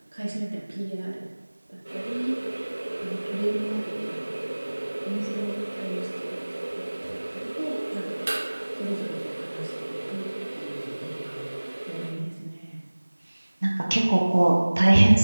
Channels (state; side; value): inverted; both; correlation -1.00